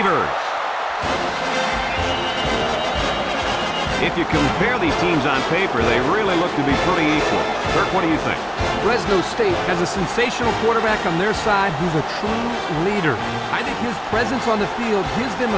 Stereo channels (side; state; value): both; identical; correlation 1.00